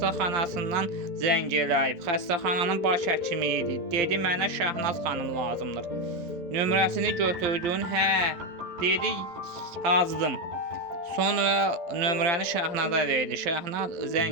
zəng eləyib. Xəstəxananın baş həkimi idi. Dedi: "Mənə Şahnaz xanım lazımdır." Nömrəsini götürdün? Hə, dedi, yazdım. Sonra nömrəni Şahnaza verdi. Şahnaz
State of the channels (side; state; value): left; late; 12 ms